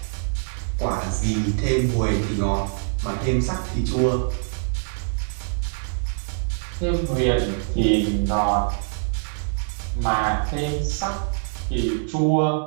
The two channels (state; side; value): silent; left; digital silence